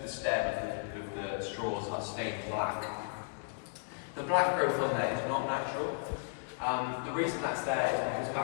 the stem of the straws are stained black. The black growth on there is not natural. The reason that's there is because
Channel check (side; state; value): right; silent; digital silence